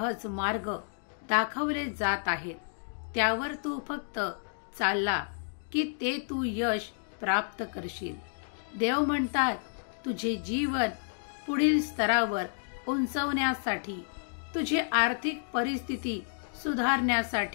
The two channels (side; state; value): right; silent; digital silence